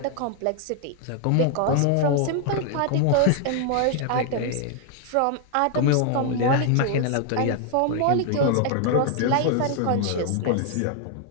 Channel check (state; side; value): different; both; correlation 0.00